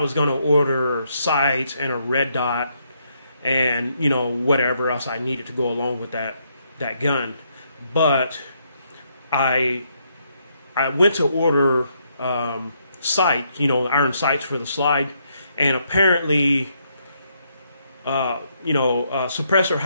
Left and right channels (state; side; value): inverted; both; correlation -0.75